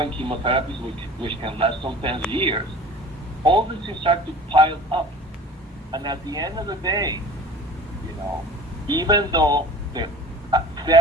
chemotherapies, which can last sometimes years, all this things start to pile up. And at the end of the day, even though the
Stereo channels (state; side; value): normal; both; correlation 0.42